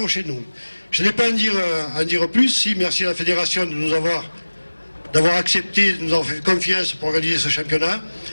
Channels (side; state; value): both; inverted; correlation -1.00